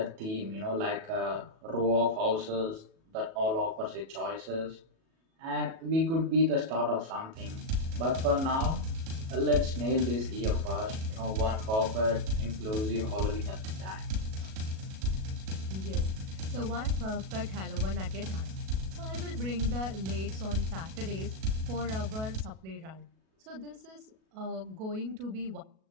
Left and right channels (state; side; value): late; left; 37 ms